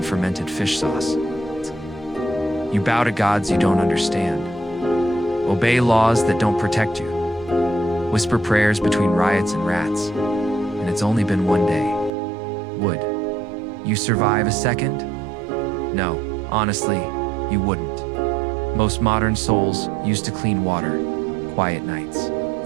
fermented fish sauce. You bow to gods you don't understand, obey laws that don't protect you, whisper prayers between riots and rats, and it's only been one day. Would you survive a second? No, honestly, you wouldn't. Most modern souls used to clean water, quiet nights.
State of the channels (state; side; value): drops out; left; at 12.1 s